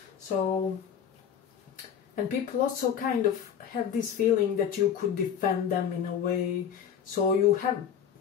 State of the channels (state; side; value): quieter; right; 8.3 dB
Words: So, and people also kind of have this feeling that you could defend them in a way. So you have